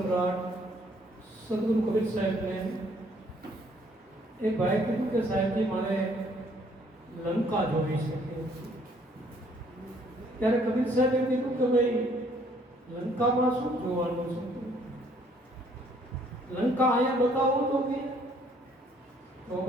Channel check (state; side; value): normal; both; correlation 0.63